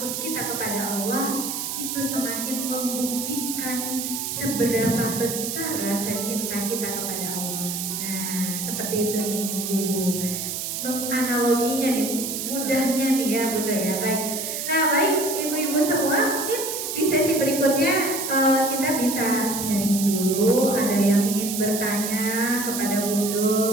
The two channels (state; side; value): noise; right; hiss, 4 dB below the sound